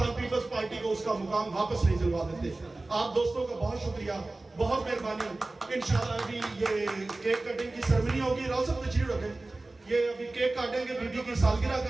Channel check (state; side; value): quieter; left; 3.0 dB